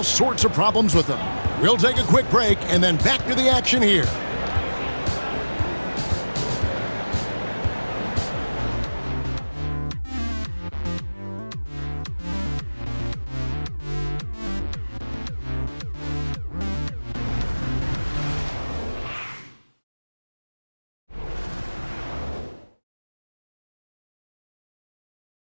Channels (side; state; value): both; inverted; correlation -1.00